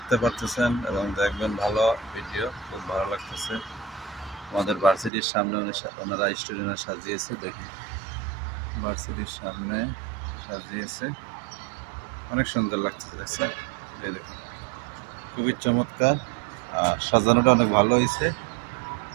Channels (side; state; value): left; drops out; at 5.1 s